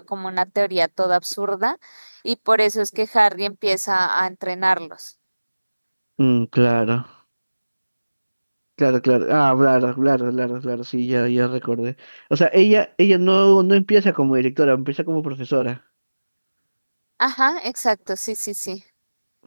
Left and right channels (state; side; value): inverted; both; correlation -1.00